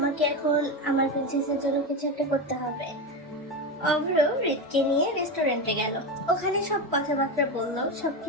এখন আমার প্রিন্সেসের জন্য কিছু একটা করতে হবে। অভ্র হৃদকে নিয়ে রেস্টুরেন্টে গেল। ওখানে সব কথাবার্তা বললো,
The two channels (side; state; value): both; normal; correlation 0.17